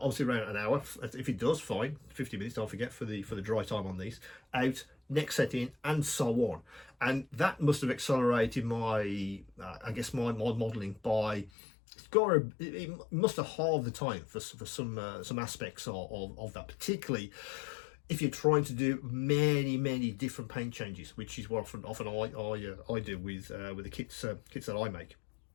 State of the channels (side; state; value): right; drops out; at 11.5 s